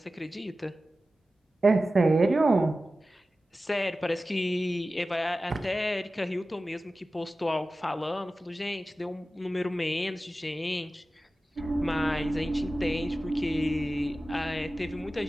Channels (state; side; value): normal; both; correlation 0.95